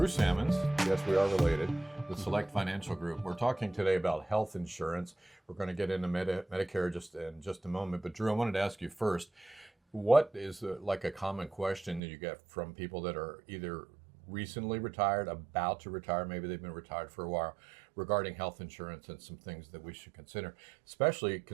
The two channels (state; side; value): drops out; left; at 12.0 s